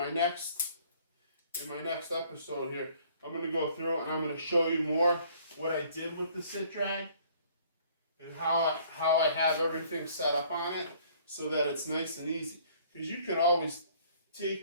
next episode here. I'm going to go through and I'm going to show you more what I did with the sit drag and how I have everything set up on it so that it's nice and easy. Because you can always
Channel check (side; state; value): both; inverted; correlation -0.58